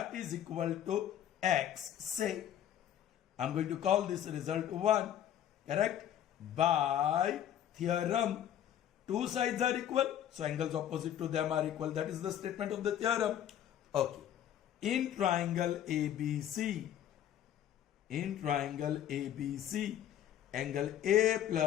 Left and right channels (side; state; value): right; quieter; 10.7 dB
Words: is equal to X. Say, I'm going to call this result 1. Correct? By theorem. Two sides are equal. So angles opposite to them are equal. That is the statement of the theorem. Okay. In triangle ABC, angle A